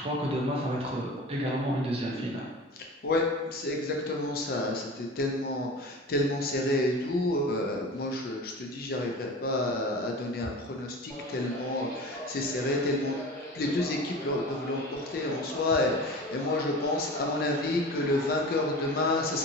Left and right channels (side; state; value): both; normal; correlation 0.35